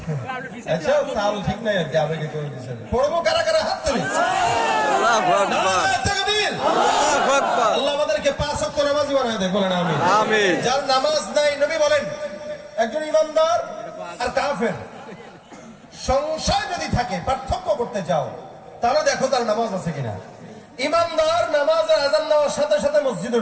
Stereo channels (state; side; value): identical; both; correlation 1.00